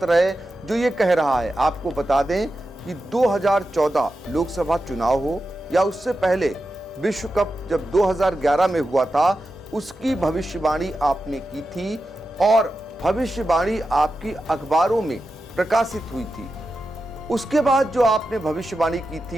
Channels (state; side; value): normal; both; correlation 0.91